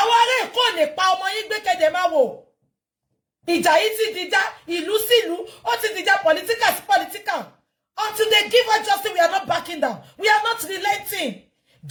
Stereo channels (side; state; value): both; identical; correlation 1.00